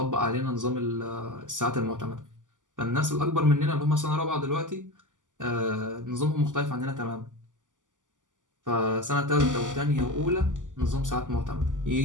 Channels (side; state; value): left; late; 0.87 ms